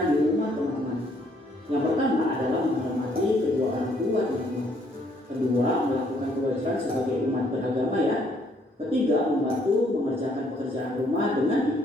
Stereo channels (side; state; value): both; normal; correlation 0.67